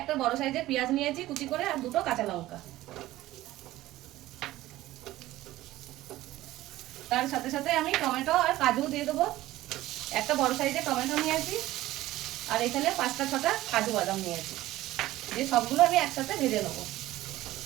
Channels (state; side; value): quieter; left; 16.1 dB